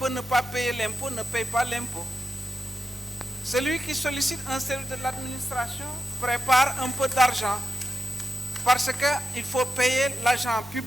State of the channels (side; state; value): left; noise; hum, 21 dB below the sound